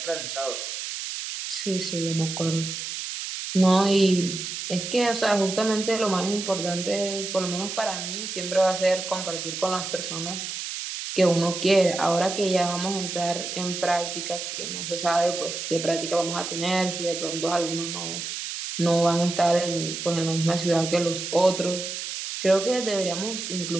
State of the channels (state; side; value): noise; right; hiss, 6 dB below the sound